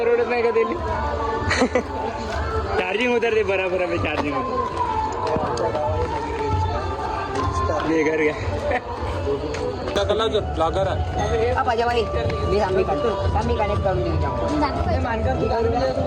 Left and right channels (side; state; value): both; identical; correlation 1.00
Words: नाही का त्याला चार्जिंग उतरते बराबर आहे चार्जिंग घर घ्या ब्लॉगर आहे पाजाबाई मी काढतो मी कनेक्ट करून देऊ